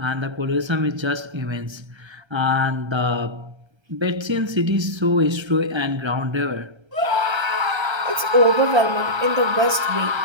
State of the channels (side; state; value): left; late; 1.3 ms